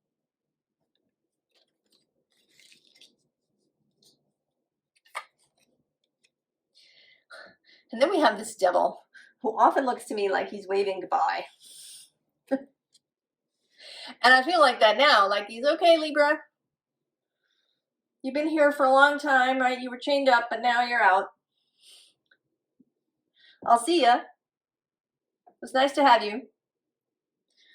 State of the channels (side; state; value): both; identical; correlation 1.00